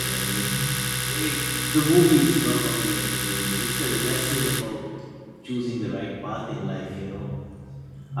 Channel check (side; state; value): both; identical; correlation 1.00